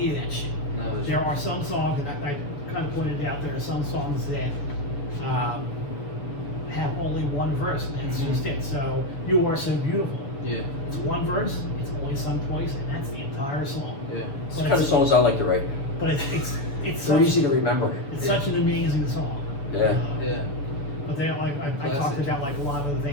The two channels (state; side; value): late; right; 7.0 ms